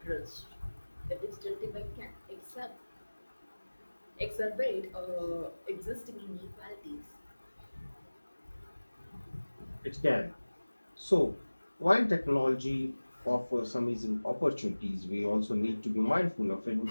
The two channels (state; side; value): inverted; both; correlation -1.00